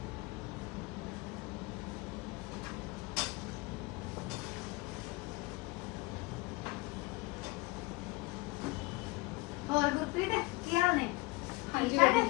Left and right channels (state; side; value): quieter; right; 23.2 dB